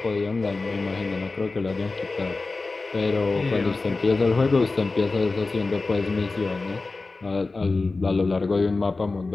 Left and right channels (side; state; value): right; quieter; 3.6 dB